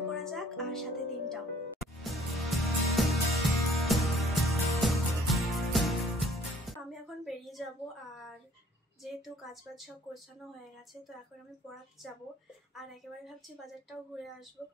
করা যাক, আর সাথে দিনটাও। আমি এখন বেরিয়ে যাব, আর যেহেতু কাজবাজ সব গোছানো হয়ে গেছে, তো এখন আমি পড়াতে যাব। আর একেবারে ভাবছি বাজারটাও ঘুরে আসবো,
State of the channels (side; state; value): both; normal; correlation 0.57